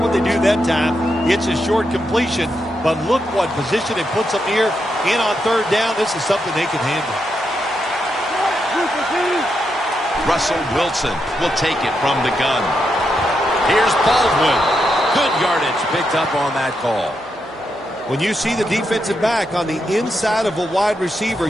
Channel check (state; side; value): noise; left; hum, 27 dB below the sound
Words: they do that time. It's a short completion, but look what position it puts them here. In on third down, this is something they can handle. Russell Wilson will take it from the gun. Here's Baldwin. Good yardage picked up on that call. When you see the defensive back on the inside of a wide receiver,